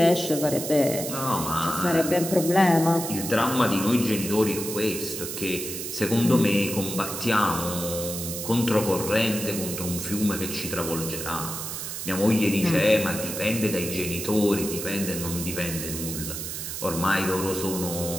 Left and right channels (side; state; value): right; noise; hiss, 6 dB below the sound